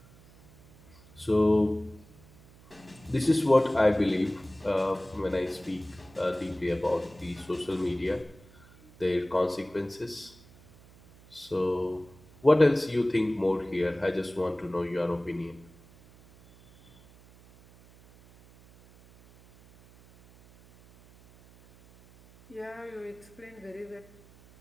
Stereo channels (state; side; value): noise; right; hum, 25 dB below the sound